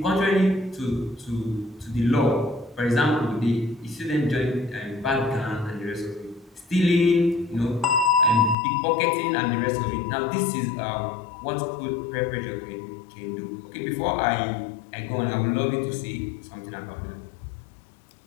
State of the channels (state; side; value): drops out; right; at 8.6 s